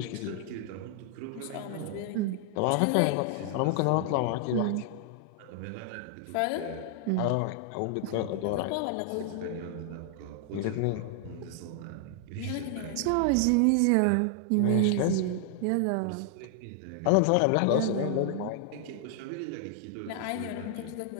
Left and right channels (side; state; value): both; different; correlation 0.00